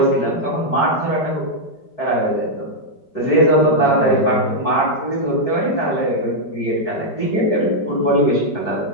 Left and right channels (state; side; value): late; right; 4.6 ms